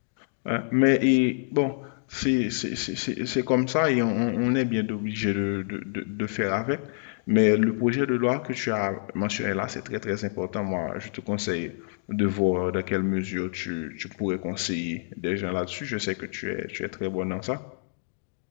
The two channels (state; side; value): silent; right; digital silence